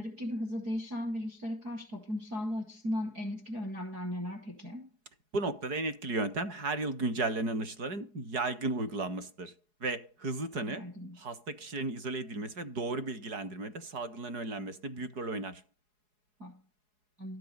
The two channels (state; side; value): late; left; 4.7 ms